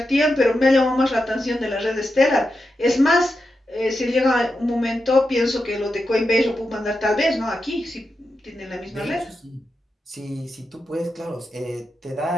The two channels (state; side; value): normal; both; correlation 0.88